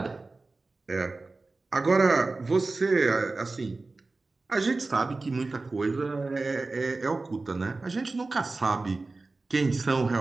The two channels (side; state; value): left; quieter; 3.5 dB